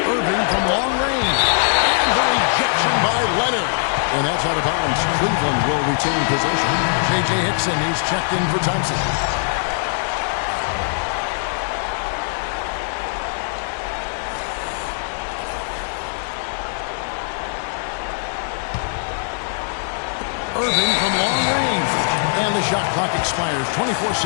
Irving from long range. And the rejection by Leonard. And that's out of bounds. Cleveland will retain possession. J.J. Hickson, he's checked in for Thompson. Irving from long range. And the shot clock expires.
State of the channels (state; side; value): silent; right; digital silence